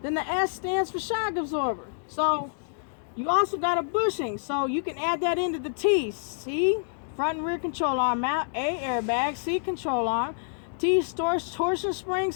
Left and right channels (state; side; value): silent; right; digital silence